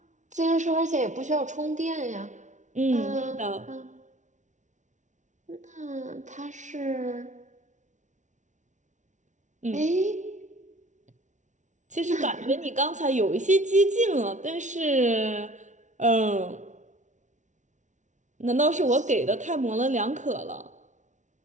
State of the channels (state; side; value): late; left; 0.36 ms